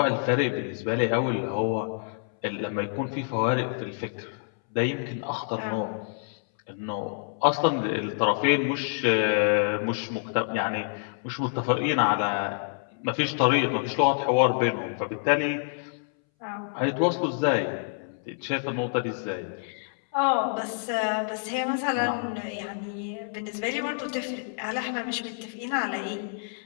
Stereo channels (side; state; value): right; silent; 60 dB below the other